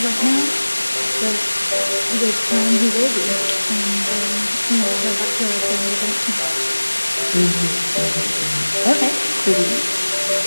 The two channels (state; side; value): inverted; both; correlation -1.00